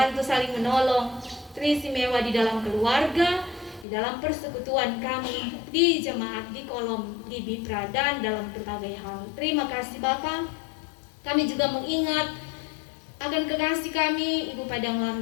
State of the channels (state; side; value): drops out; right; at 3.9 s